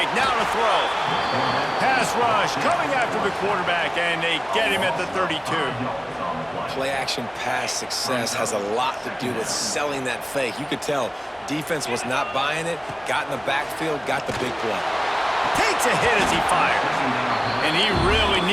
now to throw. Pass rush, coming after the quarterback, and they get him at the 32. Play-action pass success has a lot to do with selling that fake. You could tell defense was not buying it, got in the backfield, got the big play. Takes a hit as he fires. And he really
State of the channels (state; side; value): identical; both; correlation 1.00